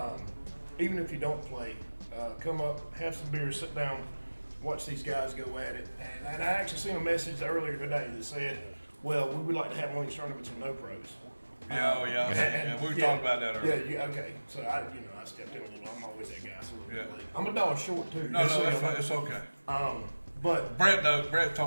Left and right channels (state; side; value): inverted; both; correlation -1.00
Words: Even if you don't play, come up, have some beers, sit down, watch these guys go at it. And I actually seen a message earlier today that said, well, we would like to have one of these tournaments with no pros. Yeah, oh yeah. Yeah, we were talking about that earlier. Yeah, okay. So I stepped in a little. I'm always that guy. So Yeah. I'm $1 short too. No, just so no, y'all know. it's okay. But Brett